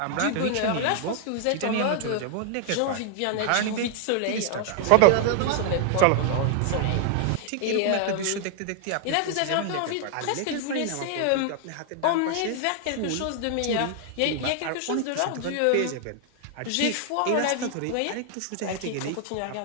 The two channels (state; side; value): different; both; correlation 0.00